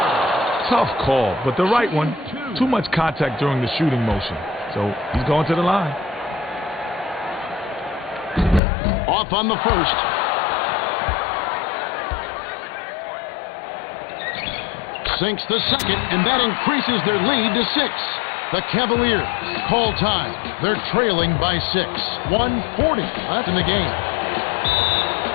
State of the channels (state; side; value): drops out; right; at 8.6 s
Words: Tough call, but the right one. Too much contact during the shooting motion. So he's going to the line. Off on the first. Sinks the second, and that increases their lead to 6. The Cavaliers call time. They're trailing by 6. 1:40 left in the game.